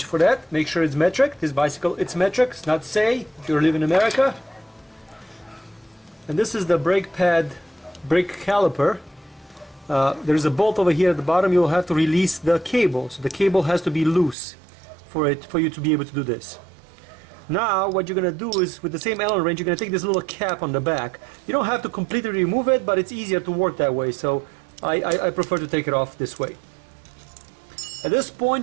for that. Make sure it's metric. This bicycle, it's metric. It's not say if you live in America. And this is the brake pad, brake caliper. There's a bolt over here at the bottom. You'll have to release the cable. So the cable has to be loose for you to be able to do this. Now what you're going to do is, with the same Allen wrench, you're going to take this little cap on the back. You don't have to completely remove it, but it's easier to work that way, so I prefer to take it off this way. At this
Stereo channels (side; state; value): left; drops out; at 14.4 s